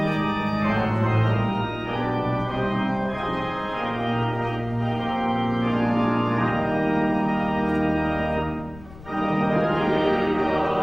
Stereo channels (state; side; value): noise; left; rumble, 19 dB below the sound